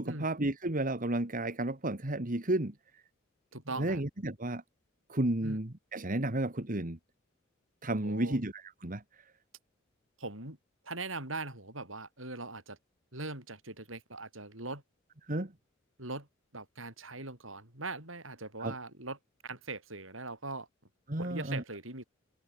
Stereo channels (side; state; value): both; normal; correlation 0.41